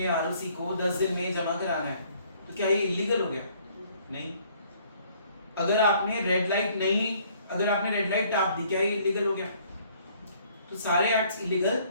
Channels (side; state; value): both; inverted; correlation -0.61